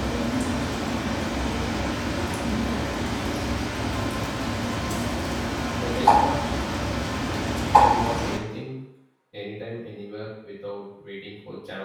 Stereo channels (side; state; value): both; identical; correlation 1.00